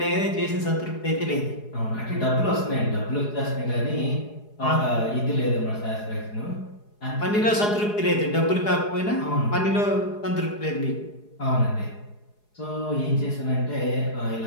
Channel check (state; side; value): late; right; 4.8 ms